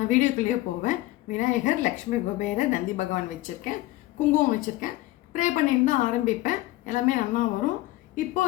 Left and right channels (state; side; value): quieter; right; 17.4 dB